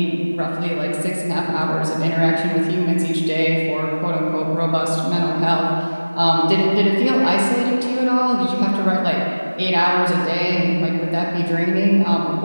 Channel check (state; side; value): inverted; both; correlation -1.00